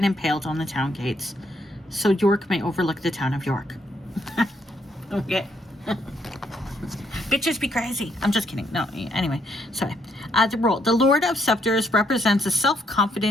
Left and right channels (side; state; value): both; normal; correlation 0.73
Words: impaled on the town gates, so York may overlook the town of York. Okay. Bitches be crazy. I'm just kidding. No, anyway, sorry. The role. The Lord of Scepters represents a